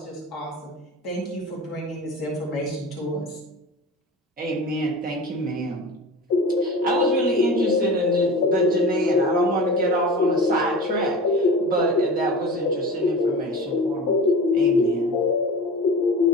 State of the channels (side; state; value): both; normal; correlation 0.33